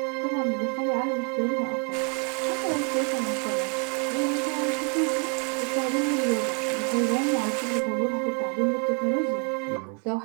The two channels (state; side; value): quieter; left; 38.6 dB